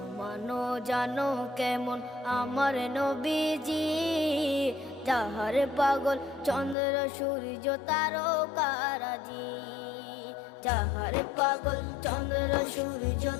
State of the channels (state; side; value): drops out; right; at 6.8 s